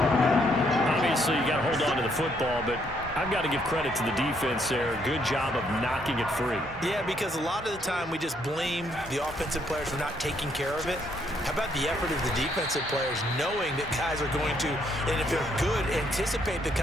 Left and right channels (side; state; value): both; normal; correlation 0.71